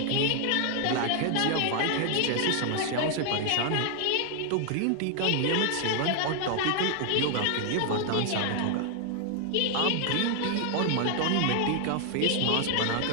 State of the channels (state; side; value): different; both; correlation 0.00